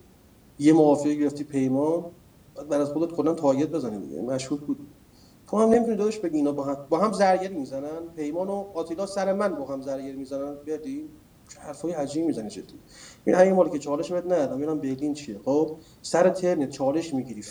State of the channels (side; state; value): both; identical; correlation 1.00